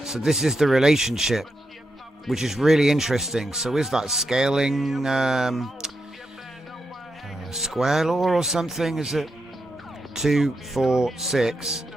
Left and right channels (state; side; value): normal; both; correlation 0.85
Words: so this is the relationship, which is really interesting. So is that scaling square law or something? Is it 2, 4, 6,